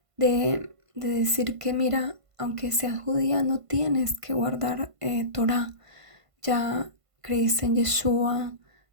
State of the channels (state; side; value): late; left; 1.5 ms